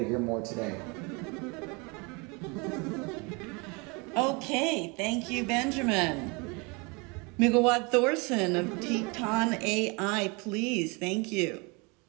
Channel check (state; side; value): quieter; left; 29.4 dB